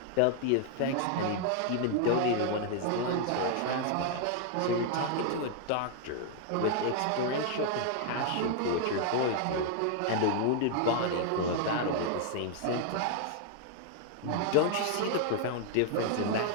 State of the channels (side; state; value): both; different; correlation 0.00